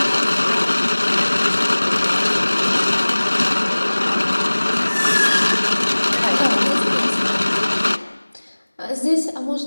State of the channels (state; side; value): inverted; both; correlation -1.00